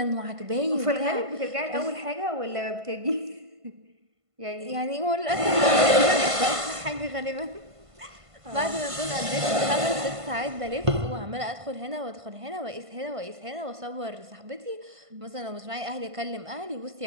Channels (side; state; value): left; late; 1.5 ms